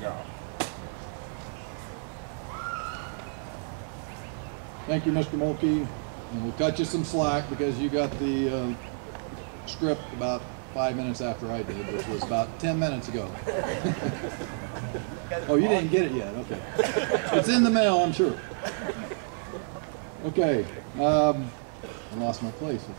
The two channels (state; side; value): silent; left; digital silence